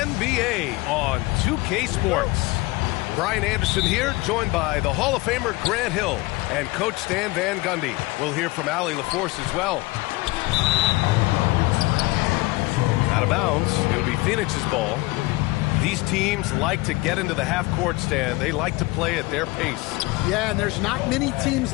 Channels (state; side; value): quieter; right; 22.1 dB